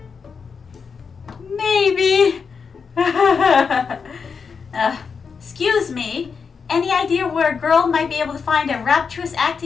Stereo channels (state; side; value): quieter; right; 5.7 dB